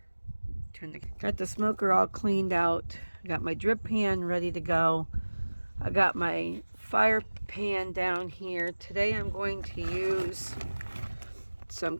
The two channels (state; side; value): inverted; both; correlation -1.00